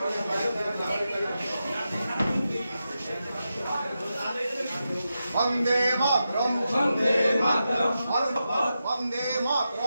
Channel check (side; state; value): both; inverted; correlation -0.89